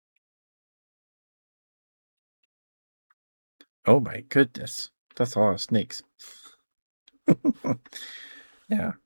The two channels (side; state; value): both; inverted; correlation -1.00